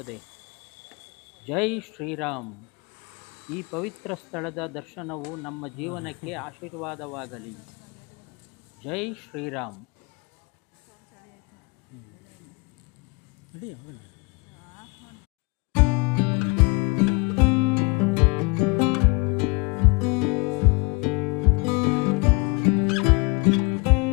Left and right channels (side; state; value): right; quieter; 28.7 dB